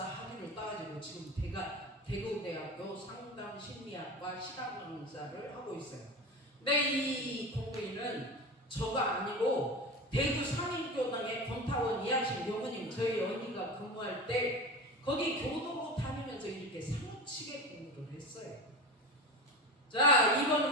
학위를 따가지고 지금 대구대학교 상담심리학과 실학강사를 하고 있어요. 근데 이 공부인은 저가 아니고 대구 상인교당의 권타원 이학신 교무님 저희 언니가 근무할 때 거기 교도로 다니면서 이렇게 사무치게 공부를 했어요. 자,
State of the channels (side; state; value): both; normal; correlation 0.27